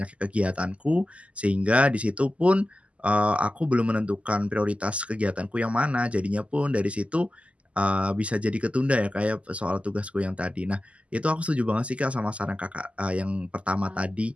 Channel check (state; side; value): late; left; 0.061 ms